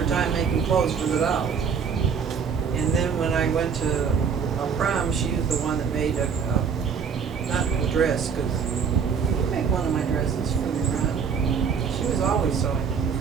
time making clothes for the dolls. And then when I went to a prom, she was the one that made not a dress, because you made one of my dresses for the prom. She was always sewing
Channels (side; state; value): left; quieter; 6.4 dB